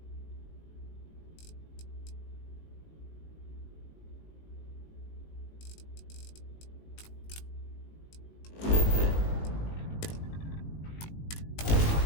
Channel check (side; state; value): right; late; 19 ms